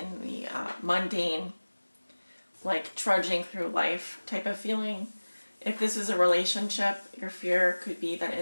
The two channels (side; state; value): both; inverted; correlation -1.00